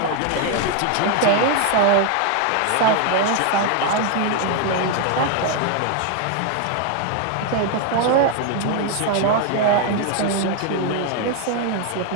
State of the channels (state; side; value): different; both; correlation 0.01